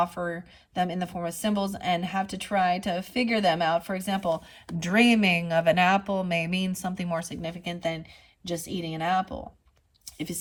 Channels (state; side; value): identical; both; correlation 1.00